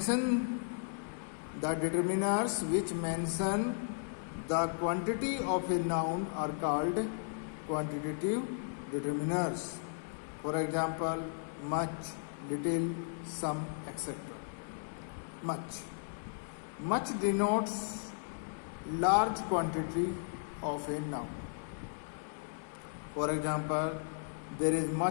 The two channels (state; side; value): silent; right; digital silence